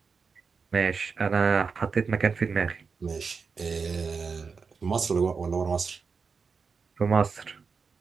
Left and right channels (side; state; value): left; quieter; 5.3 dB